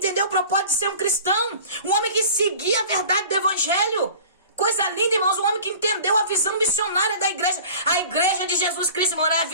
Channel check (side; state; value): both; inverted; correlation -0.43